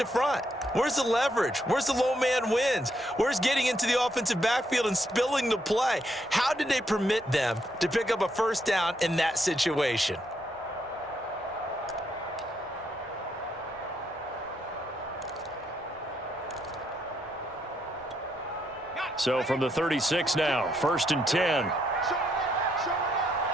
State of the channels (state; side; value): normal; both; correlation 0.76